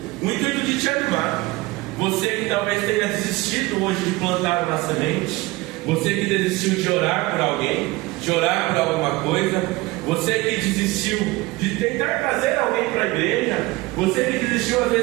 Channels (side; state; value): left; quieter; 21.3 dB